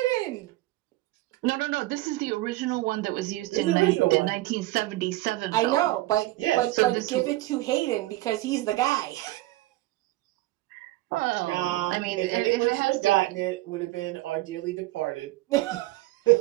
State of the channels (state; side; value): quieter; left; 18.1 dB